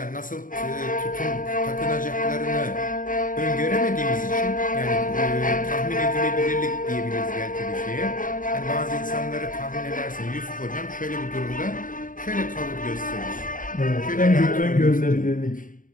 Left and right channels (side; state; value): right; late; 0.39 ms